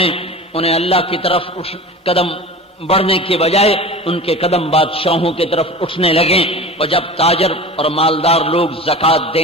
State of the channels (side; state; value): both; normal; correlation 0.34